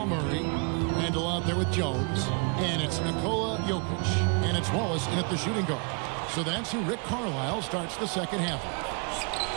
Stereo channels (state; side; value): quieter; left; 35.7 dB